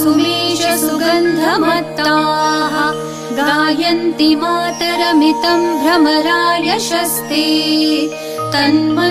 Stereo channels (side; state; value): both; identical; correlation 1.00